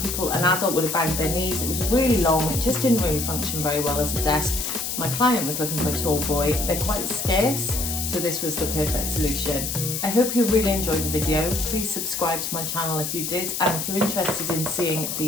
adult would have banged their knees. It was really long. It just didn't really function very well as a desk. My client was looking for a tall boy. They're quite scarce, so this was the perfect solution. I hope you really enjoyed the video. Please subscribe to my channel if you did, and if you're interested in seeing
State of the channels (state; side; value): noise; left; hiss, 3 dB below the sound